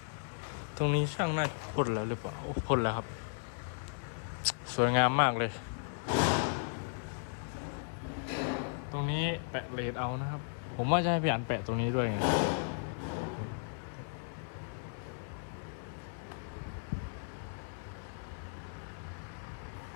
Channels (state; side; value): silent; right; 54 dB below the other